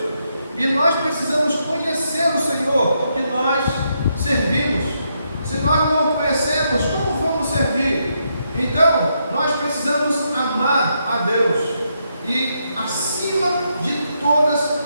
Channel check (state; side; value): inverted; both; correlation -0.79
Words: E nós precisamos conhecer o Senhor que nós servimos. Se nós não o conhecemos, como vamos servir? Então, nós precisamos amar a Deus e acima de todas